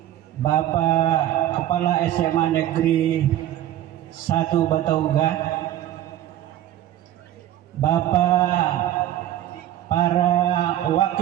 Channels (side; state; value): left; quieter; 12.7 dB